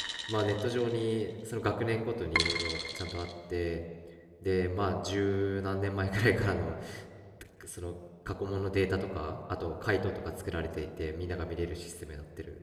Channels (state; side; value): identical; both; correlation 1.00